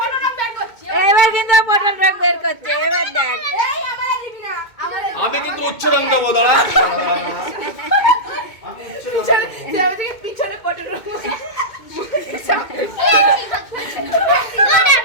এবার কিন্তু পটল রং বের করছে। এবার দেখ, আমি কিন্তু উচ্চ রং দেবো, দাঁড়া পিছনে পটল রং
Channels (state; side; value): late; right; 2.2 ms